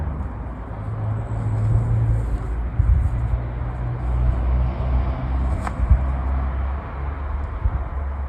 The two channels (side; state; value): both; identical; correlation 1.00